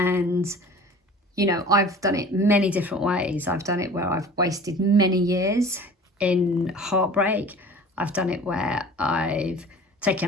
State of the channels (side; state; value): both; normal; correlation 0.43